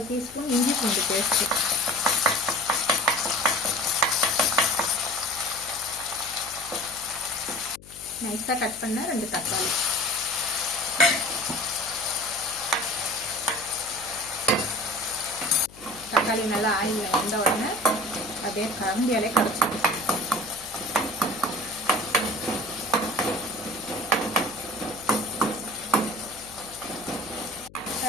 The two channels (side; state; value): left; noise; hum, 21 dB below the sound